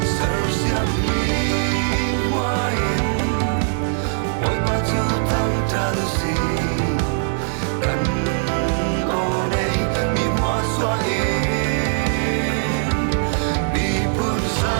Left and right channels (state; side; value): silent; left; digital silence